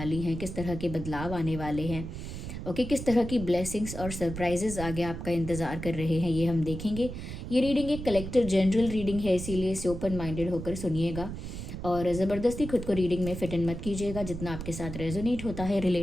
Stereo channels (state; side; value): noise; right; rumble, 8 dB below the sound